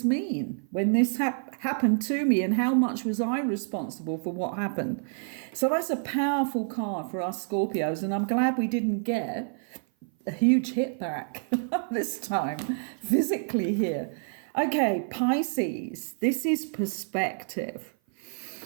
mean when this happened to me, and how much was I responsible for what happened? So that's a powerful card for us Scorpios, and I'm glad we didn't get a huge hit back this time physically here. Okay, Pisces, this is perspective,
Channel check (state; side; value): silent; left; 55 dB below the other